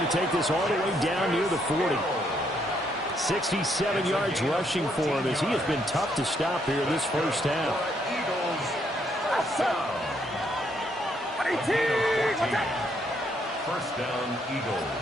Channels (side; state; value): both; normal; correlation 0.73